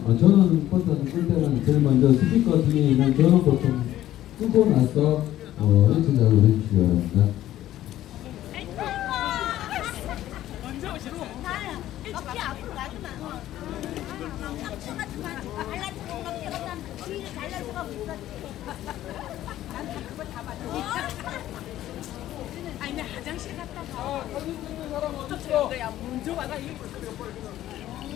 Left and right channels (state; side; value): quieter; right; 13.5 dB